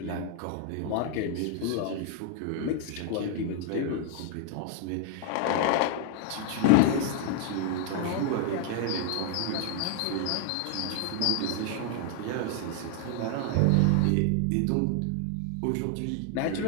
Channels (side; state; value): both; different; correlation 0.00